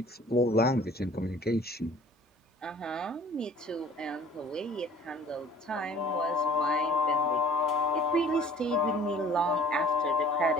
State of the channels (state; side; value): normal; both; correlation 0.51